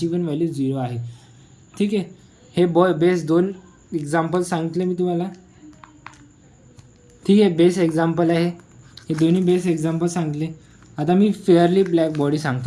पण व्हॅल्यू 0 आहे. ठीक आहे, हे बेस 2 एक्झाम्पल सांगितले मी तुम्हाला. ठीक आहे, बेस एक्झाम्पल आहे हे, दोन्ही बेस एक्झाम्पल सांगितले. आता मी फेअरली ब्लॅक बॉडी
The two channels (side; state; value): both; identical; correlation 1.00